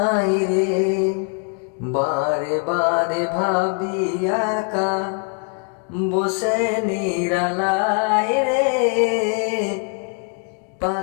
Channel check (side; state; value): right; quieter; 34.1 dB